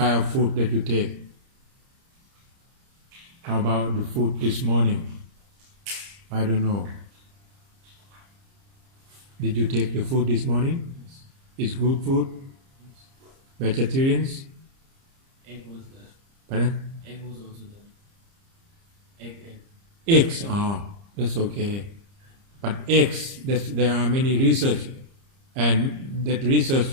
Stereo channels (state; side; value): late; left; 30 ms